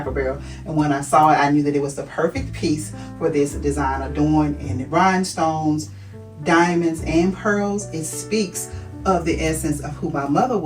Barrel, and when I saw it, I knew that it was the perfect piece for this design, adorned in rhinestones, diamonds, and pearls. It speaks of the essence of who my mother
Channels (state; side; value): identical; both; correlation 1.00